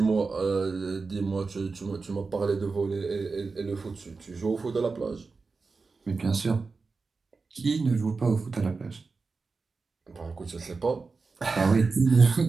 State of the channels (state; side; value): quieter; left; 4.3 dB